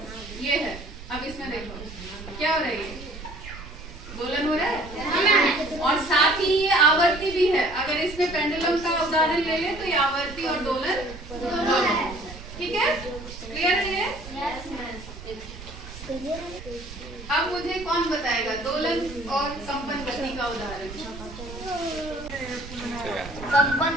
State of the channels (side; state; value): right; noise; rumble, 13 dB below the sound